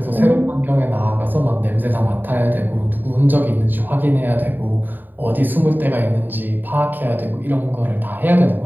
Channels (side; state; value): left; late; 0.090 ms